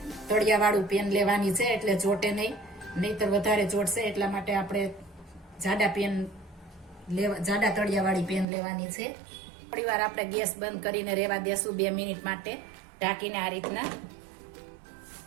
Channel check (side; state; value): left; drops out; at 8.5 s